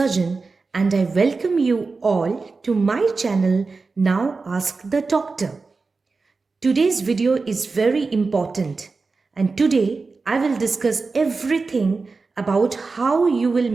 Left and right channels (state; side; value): quieter; left; 4.1 dB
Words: and I welcome you all to my channel Now Ask the Doctor. Today's video is very important and today I will discuss everything about how you will